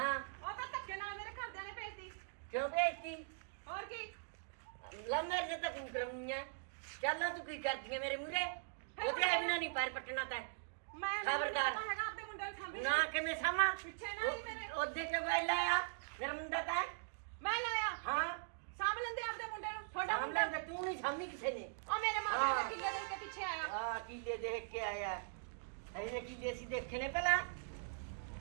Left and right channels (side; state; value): left; silent; digital silence